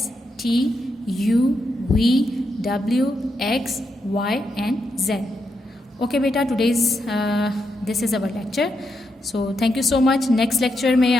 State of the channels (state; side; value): normal; both; correlation 0.83